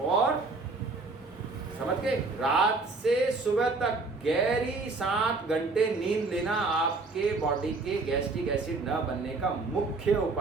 और समझ गए, रात से सुबह तक गहरी 7 घंटे नींद लेना आपके बॉडी के गैस्ट्रिक एसिड न बनने का मुख्य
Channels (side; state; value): left; quieter; 3.7 dB